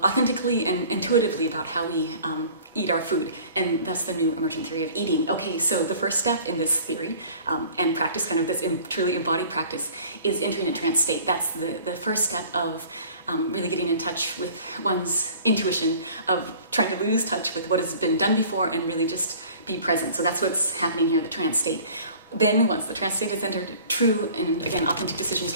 and intuitively about how we eat our food, and thus the new emergent theory of eating. Okay, so the first step in this theory and practice, kind of this truly embodied practice, is entering a trance state. That's the first step of really getting in touch with one's intuition, of trying to lose touch with what has been done before and really just be present. So that's what's happening here, the trance state. Then once the trance state is entered, true and again authentic decisions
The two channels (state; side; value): inverted; both; correlation -0.48